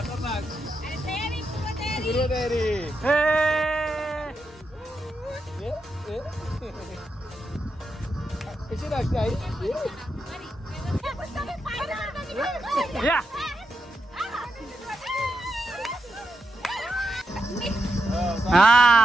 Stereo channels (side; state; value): both; normal; correlation 0.86